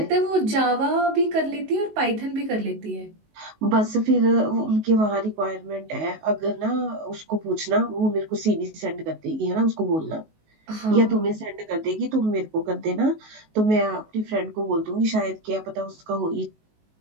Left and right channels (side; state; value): left; late; 19 ms